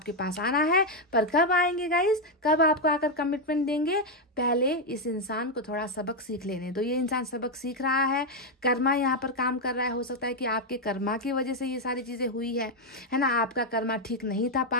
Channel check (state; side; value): normal; both; correlation 0.03